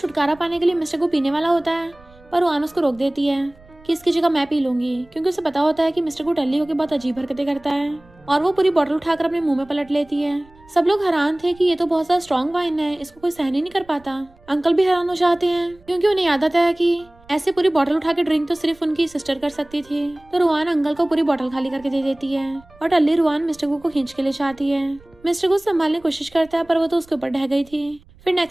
छुटकारा पाने के लिए मिस्टर को पीने वाला होता है, पर रुआन उसको रोक देती है कि इसकी जगह मैं पी लूंगी, क्योंकि उसे पता होता है कि मिस्टर को टल्ली होकर बहुत अजीब हरकतें करता है, और वो पूरी बोतल उठाकर अपने मुंह में पलट लेती है। सब लोग हैरान थे कि ये तो बहुत ज्यादा स्ट्रॉन्ग वाइन है, इसको कोई सहन ही नहीं कर पाता। अंकल भी हैरान हो जाते हैं क्योंकि उन्हें याद आता है कि ऐसे पूरी बोतल उठा के ड्रिंक तो सिर्फ उनकी सिस्टर कर सकती थी। तो रुआन अंकल को पूरी बोतल खाली करके दे देती है, और टल्ली रुआन मिस्टर को खींच के ले जाती है। मिस्टर को संभालने की कोशिश करता है, पर वो तो उसके ऊपर ढह गई थी। फिर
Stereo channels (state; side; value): noise; right; rumble, 27 dB below the sound